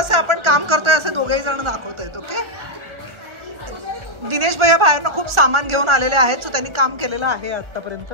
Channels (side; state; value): left; late; 1.4 ms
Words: आपण काम करतोय असे दोघेही जण दाखवतायत. ओके, दिनेश भैया बाहेरनं खूप सामान घेऊन आलेले आहेत, सो त्यांनी काम केलेलं आहे आतापर्यंत.